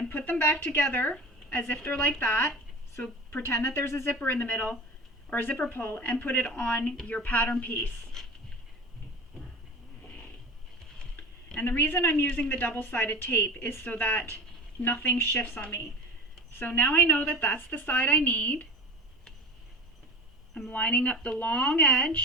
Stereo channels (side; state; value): both; normal; correlation 0.32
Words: put them back together as if they're like that. So pretend that there's a zipper in the middle, or a zipper pull, and put it on your pattern piece. And the reason I'm using the double-sided tape is so that nothing shifts on me. So now I know that that's the side I need. I'm lining up the long